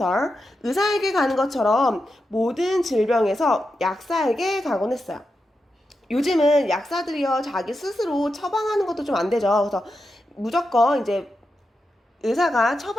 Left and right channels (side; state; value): both; normal; correlation 0.88